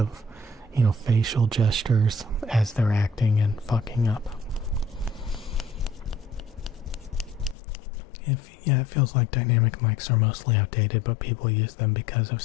facial gestures as they're acting and fucking up. It feels like dynamic mics are mostly outdated, but people use them because of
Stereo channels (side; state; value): right; drops out; at 7.6 s